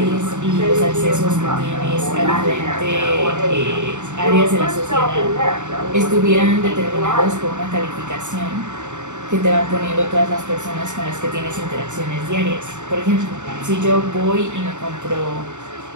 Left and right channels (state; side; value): late; left; 0.84 ms